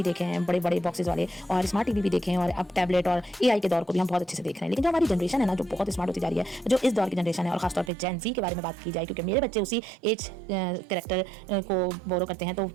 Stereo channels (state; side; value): drops out; left; at 7.9 s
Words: देखे हैं, बड़े बड़े बॉक्सेस वाले, और स्मार्ट टीवी भी देखे हैं, और अब टैबलेट और एआई के दौर को भी हम बहुत अच्छे से देख रहे हैं। लेकिन जो हमारी जनरेशन है ना, जो बहुत स्मार्ट होती जा रही है, जो इस दौर की जनरेशन है, और खासतौर पर जेन जी के बारे में बात की जाए, क्योंकि मेरे बच्चे उसी एज कैरेक्टर को बोरो करते हैं, तो